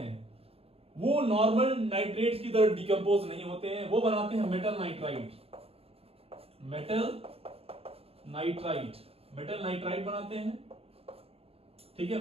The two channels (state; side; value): late; left; 0.28 ms